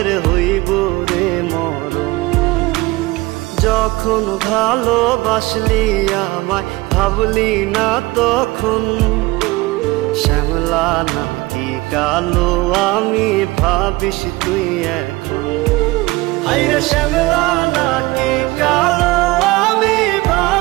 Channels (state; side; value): quieter; left; 21.1 dB